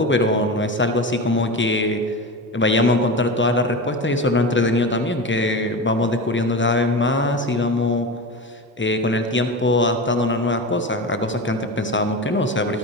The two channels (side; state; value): both; normal; correlation 0.25